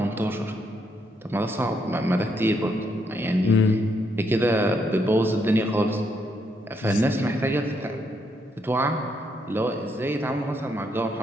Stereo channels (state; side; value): normal; both; correlation 0.75